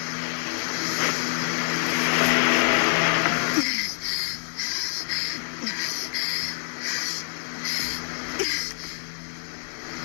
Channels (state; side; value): silent; right; 61 dB below the other